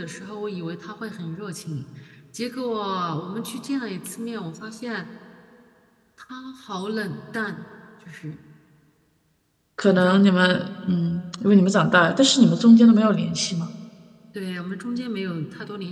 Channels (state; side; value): identical; both; correlation 1.00